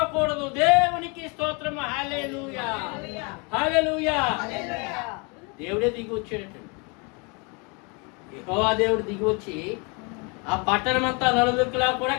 దేవునికి స్తోత్రం. హల్లెలూయా, హల్లెలూయా. దేవుడే దిగి వచ్చాడటండి. యెహోవా దేవుడు దిగి వచ్చి ఆ పట్టణం అంతా నలుదిక్కులా కూడా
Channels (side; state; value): right; quieter; 31.5 dB